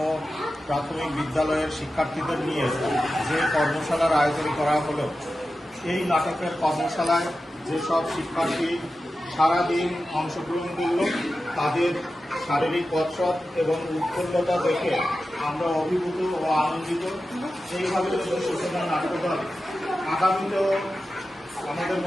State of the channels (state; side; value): normal; both; correlation 0.93